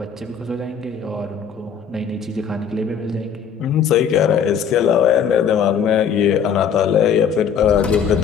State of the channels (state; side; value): quieter; right; 7.3 dB